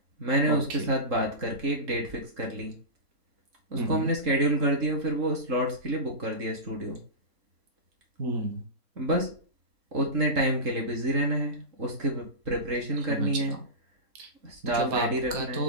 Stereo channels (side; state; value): left; late; 3.7 ms